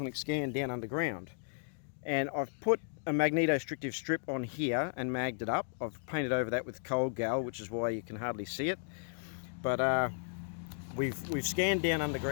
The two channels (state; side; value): silent; right; digital silence